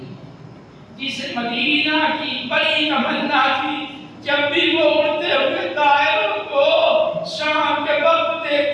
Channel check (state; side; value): identical; both; correlation 1.00